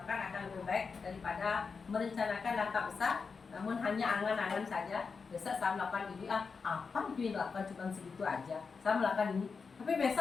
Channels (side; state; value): right; quieter; 5.1 dB